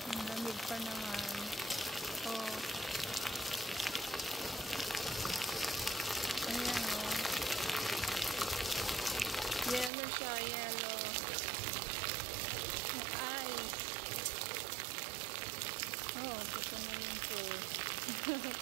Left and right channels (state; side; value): drops out; left; at 9.9 s